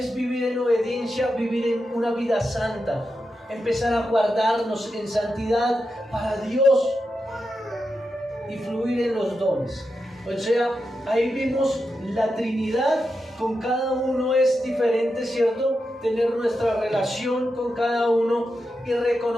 vivir en obediencia? Vivir en una vida santa. Empezar a guardarnos en santidad para Dios. y fluir en los dones. O sea, ahí vimos la Trinidad, con cada uno es diferente, ¿cierto? Tener nuestra relación con cada uno y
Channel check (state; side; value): normal; both; correlation 0.88